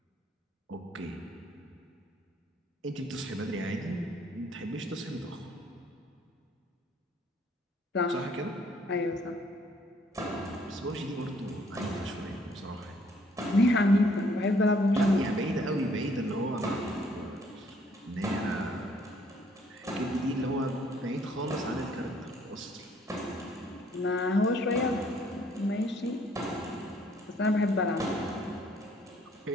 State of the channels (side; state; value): both; normal; correlation 0.64